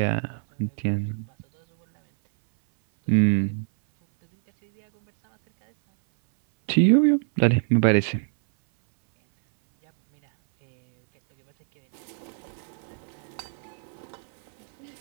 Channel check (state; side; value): silent; left; 60 dB below the other